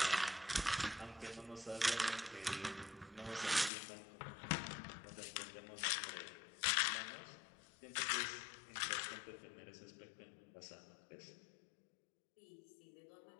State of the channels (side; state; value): right; drops out; at 3.7 s